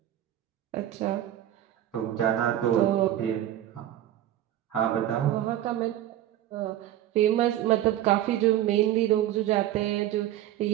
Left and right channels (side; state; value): left; quieter; 12.7 dB